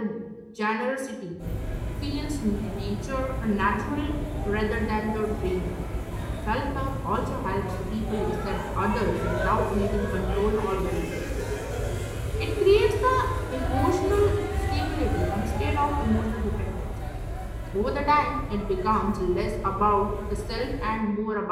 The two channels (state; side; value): identical; both; correlation 1.00